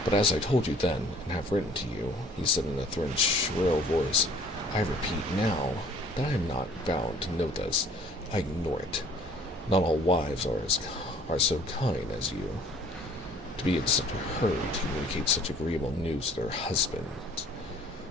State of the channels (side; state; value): both; normal; correlation 0.55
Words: "But as I told you then, and have written to you," he said in a thin, shrill voice, "I repeat now that I am not bound to know this. I ignore it. Not all wives are so kind as you, to be in such a hurry to communicate such agreeable news to their husbands."